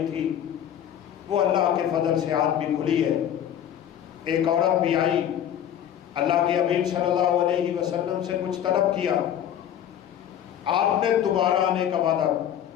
تھی، وہ اللہ کے فضل سے آج بھی کھلی ہے۔ ایک عورت بھی آئی، اللہ کے حبیب صلی اللہ علیہ وسلم سے کچھ طلب کیا، آپ نے دوبارہ آنے کا وعدہ،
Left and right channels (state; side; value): quieter; right; 10.1 dB